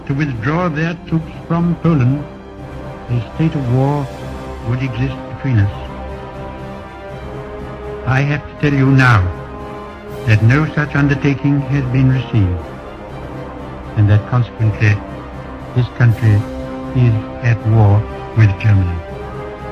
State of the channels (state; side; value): identical; both; correlation 1.00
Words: to withdraw their troops from Poland, a state of war would exist between us. I have to tell you now that no such undertaking has been received, and that consequently this country is at war with Germany.